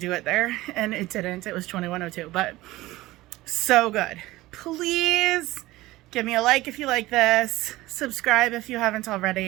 it there. And it didn't. It was $21.02, but so good. Please give me a like if you like this. Subscribe if you haven't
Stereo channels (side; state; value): left; quieter; 18.2 dB